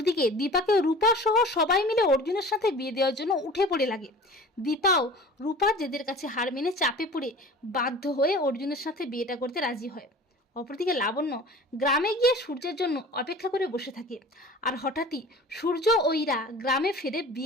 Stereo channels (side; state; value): both; normal; correlation 0.41